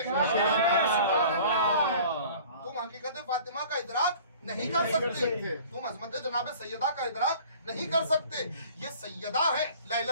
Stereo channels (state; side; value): inverted; both; correlation -0.47